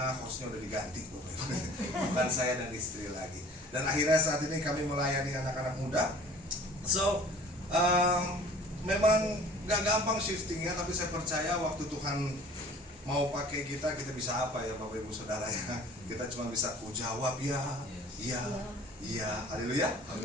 hostnya udah diganti, Bapak Ibu. Bukan saya dan istri lagi. Dan akhirnya saat ini kami melayani anak-anak muda. So, memang gak gampang shiftingnya, tapi saya percaya waktu Tuhan mau pakai kita bisa apa ya Bapak Ibu Saudara ya. Kita cuma bisa jawab ya, iya, iya, haleluya.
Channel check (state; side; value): normal; both; correlation 0.48